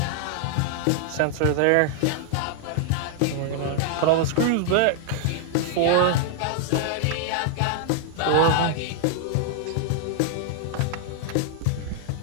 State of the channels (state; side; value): different; both; correlation 0.00